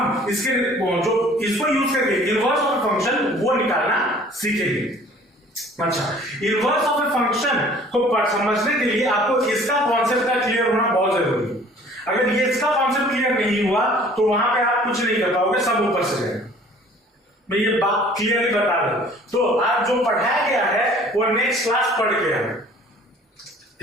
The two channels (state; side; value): normal; both; correlation 0.52